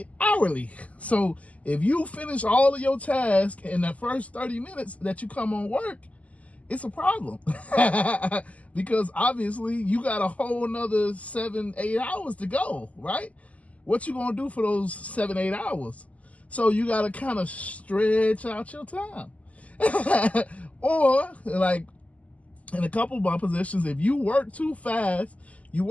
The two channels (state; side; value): late; right; 0.070 ms